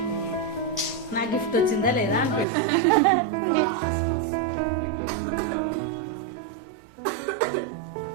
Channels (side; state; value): left; drops out; at 2.5 s